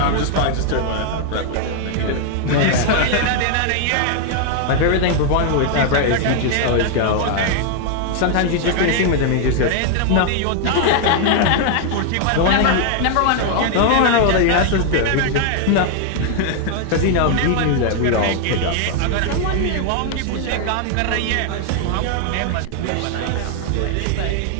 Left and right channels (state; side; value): different; both; correlation 0.00